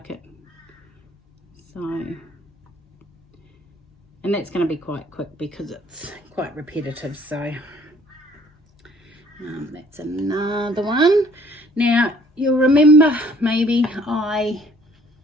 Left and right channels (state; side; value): normal; both; correlation 0.58